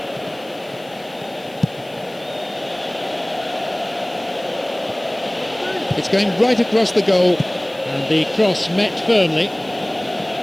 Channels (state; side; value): noise; left; hiss, 26 dB below the sound